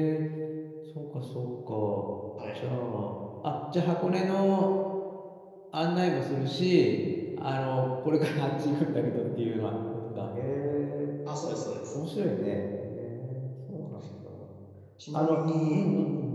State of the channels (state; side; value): identical; both; correlation 1.00